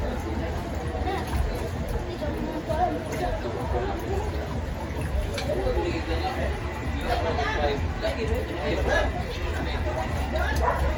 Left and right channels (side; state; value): both; identical; correlation 1.00